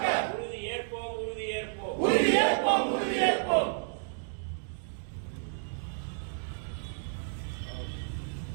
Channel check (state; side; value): silent; left; digital silence